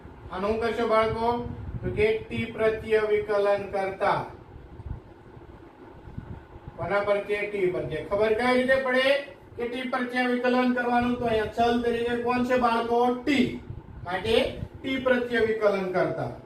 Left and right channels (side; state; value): both; identical; correlation 1.00